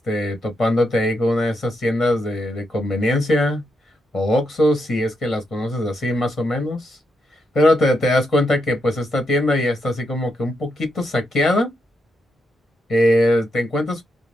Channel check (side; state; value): both; normal; correlation 0.82